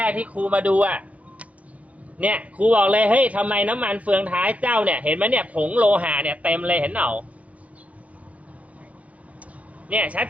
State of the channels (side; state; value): left; late; 0.067 ms